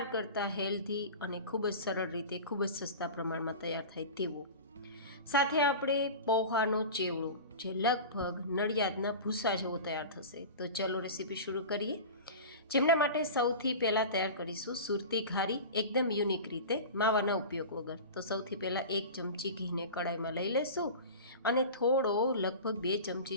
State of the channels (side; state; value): both; inverted; correlation -0.32